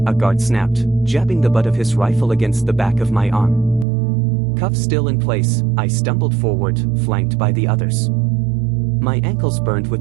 guard snapped, jabbing the butt of his rifle against the back of my arm. Cuffs still in place, I stumbled forward, flanked by the others. My ankles burned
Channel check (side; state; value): left; drops out; at 3.9 s